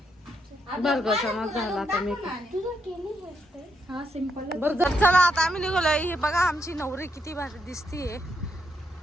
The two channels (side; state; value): both; normal; correlation 0.79